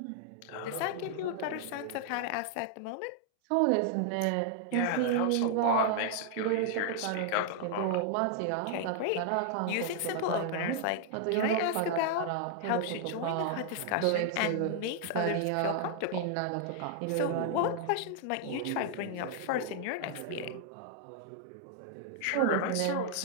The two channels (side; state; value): both; different; correlation 0.00